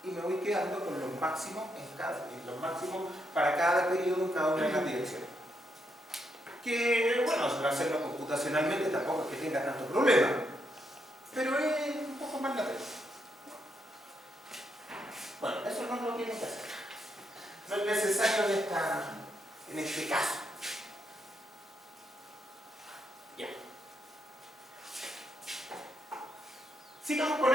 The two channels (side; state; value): both; normal; correlation 0.79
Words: Y me voy quedando con los máximos, los máximos para cada periodo en cada una de las direcciones. Que, bueno, hacerlo computacionalmente tampoco es que tenga tanto problema, pero es un poco más latente. Bueno, eso no lo tienen que hacer. No es necesario en este caso. Ya. Sigamos con